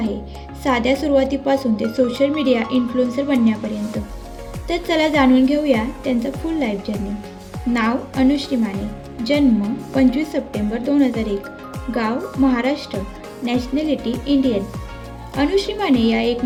साध्या सुरुवातीपासून ते सोशल मीडिया इन्फ्लुएन्सर बनण्यापर्यंत। तर चला जाणून घेऊया त्यांचा फुल लाईफ जर्नी। नाव अनुश्री माने, जन्म 25 सप्टेंबर 2001, गाव महाराष्ट्र, नॅशनॅलिटी इंडियन। अनुश्री माने या एक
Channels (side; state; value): both; identical; correlation 1.00